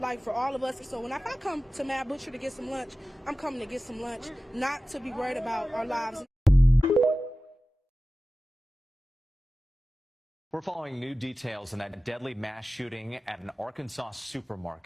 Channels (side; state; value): both; normal; correlation 0.95